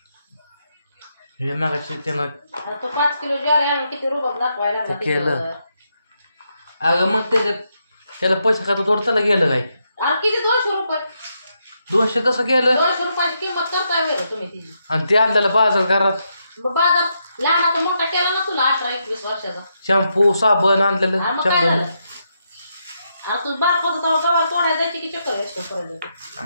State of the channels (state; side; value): inverted; both; correlation -0.81